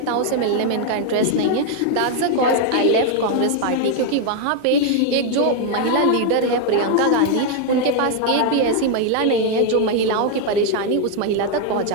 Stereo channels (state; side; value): different; both; correlation 0.01